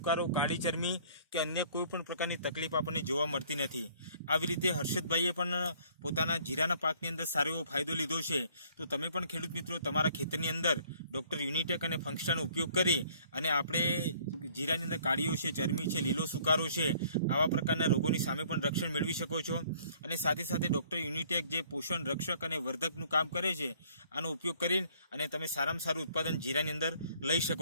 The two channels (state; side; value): inverted; both; correlation -0.59